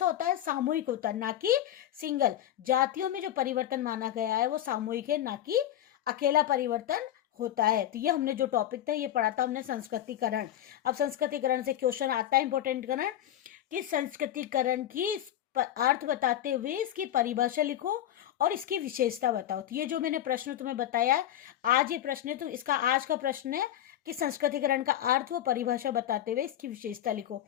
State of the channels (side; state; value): right; quieter; 11.8 dB